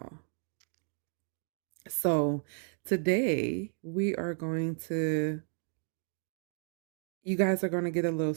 So today you guys are going to get a little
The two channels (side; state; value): left; silent; 56 dB below the other